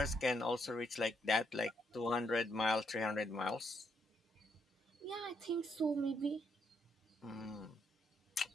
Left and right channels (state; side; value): normal; both; correlation 0.76